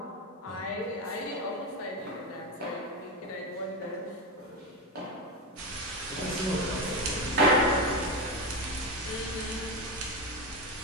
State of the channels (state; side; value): normal; both; correlation 0.15